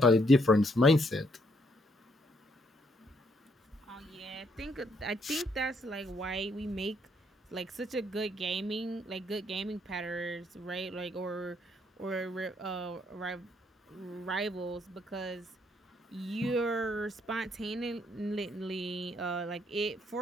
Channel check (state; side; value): normal; both; correlation 0.72